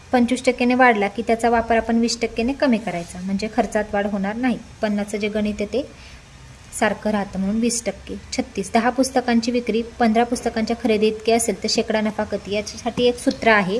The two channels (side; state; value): both; identical; correlation 1.00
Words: 25%ने वाढला की त्याचा वापर आपण 20%ने कमी करायचा, म्हणजे खर्चात वाढ होणार नाही। 50चं जे गणित आहे ते सारखं राहतं म्हणून 20%। 36, 10 पुस्तकांची विक्री 15 पुस्तकांच्या खरेदी इतकी असेल तर शेकडा नफा किती। याच्यासाठी एक सूत्र आहे,